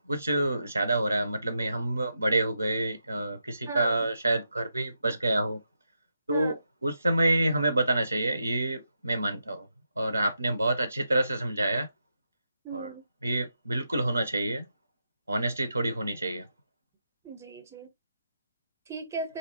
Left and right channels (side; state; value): both; inverted; correlation -0.85